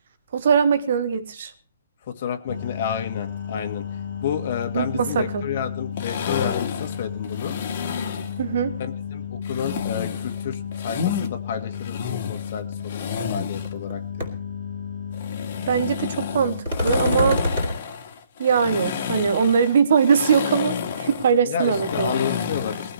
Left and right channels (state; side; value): inverted; both; correlation -0.62